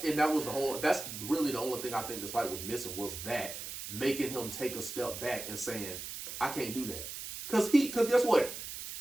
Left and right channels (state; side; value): noise; right; hiss, 8 dB below the sound